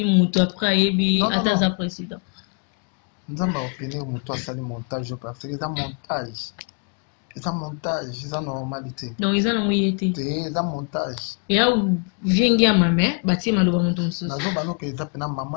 moto après ayebi ata aza président nzambe aopinion moto asali montage parce que eza montage eza normalité donc eza nango ye te eza montage ya viengi ya mame batie maloba moto mosusu nazobanoka eza mpena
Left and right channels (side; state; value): right; quieter; 36.8 dB